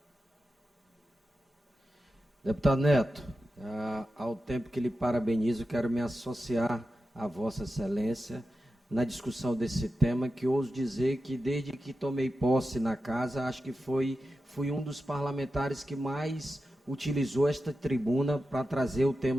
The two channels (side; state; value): both; normal; correlation 0.91